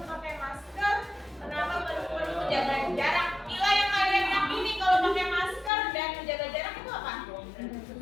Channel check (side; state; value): right; drops out; at 5.7 s